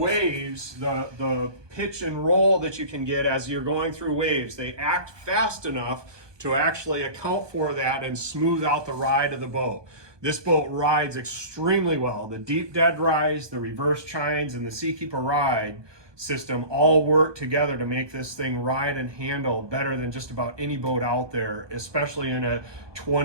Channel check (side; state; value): left; late; 1.2 ms